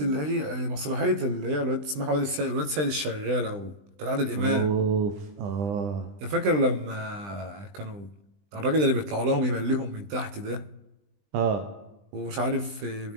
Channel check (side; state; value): left; late; 20 ms